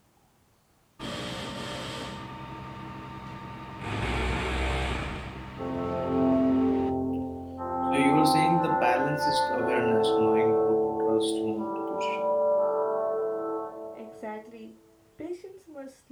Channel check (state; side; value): identical; both; correlation 1.00